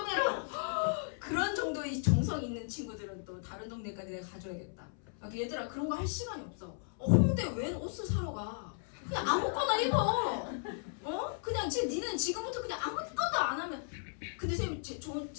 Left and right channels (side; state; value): right; silent; 54 dB below the other